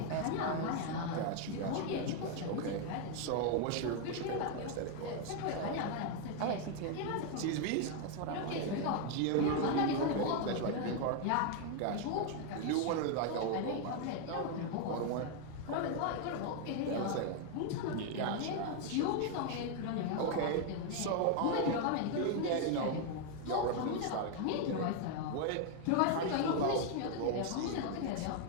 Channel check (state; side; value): different; both; correlation 0.01